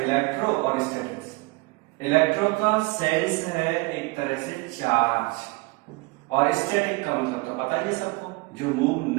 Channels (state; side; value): quieter; left; 25.3 dB